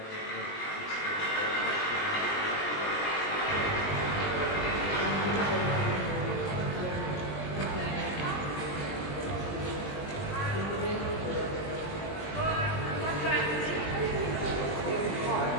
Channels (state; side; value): late; right; 20 ms